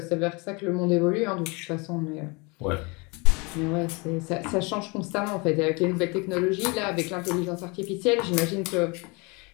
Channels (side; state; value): right; quieter; 28.7 dB